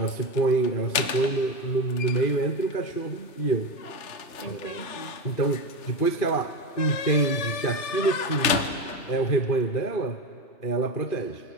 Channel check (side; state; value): right; late; 3.3 ms